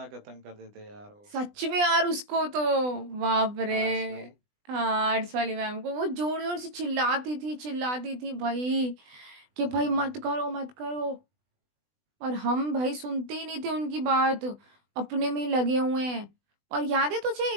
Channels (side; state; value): left; late; 20 ms